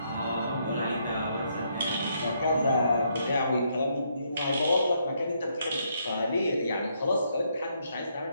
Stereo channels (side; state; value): both; inverted; correlation -0.74